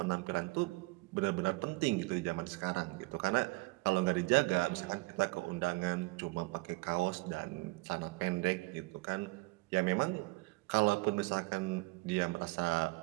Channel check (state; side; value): quieter; left; 24.6 dB